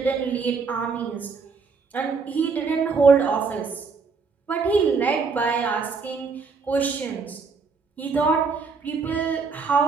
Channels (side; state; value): left; quieter; 4.9 dB